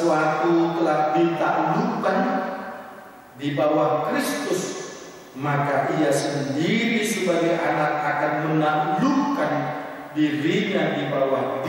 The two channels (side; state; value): both; identical; correlation 1.00